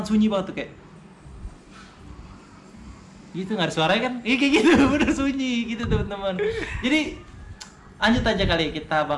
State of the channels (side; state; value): both; identical; correlation 1.00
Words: sunyi banget tuh kayak gitu, nggak ada suaranya kan? Iya kayak gitu, bener sunyi gitu teman-teman. Jadi lanjut aja kali, kita